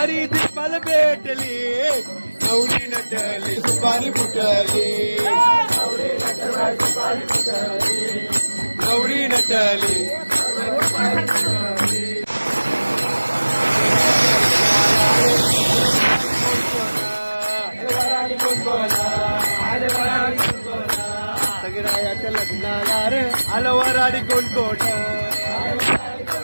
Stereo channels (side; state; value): both; inverted; correlation -1.00